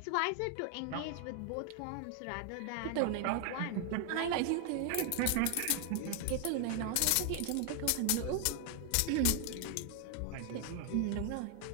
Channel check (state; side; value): different; both; correlation 0.00